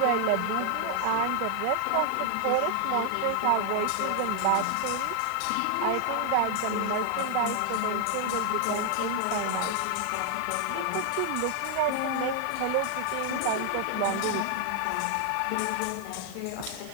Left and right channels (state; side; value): different; both; correlation 0.00